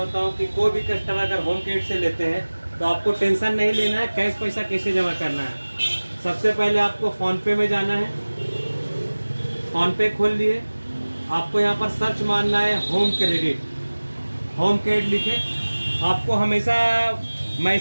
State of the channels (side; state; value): both; inverted; correlation -1.00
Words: हूँ कि कोई भी कस्टमर अगर होम क्रेडिट से लेते हैं तो आपको टेंशन नहीं लेना है, कैश पैसा कैसे जमा करना है। सबसे पहले आपको फ़ोनपे में जाना है। फ़ोनपे खोल लिए, आपको यहाँ पर सर्च मारना है होम क्रेडिट। होम क्रेडिट लिखे, आपको हमेशा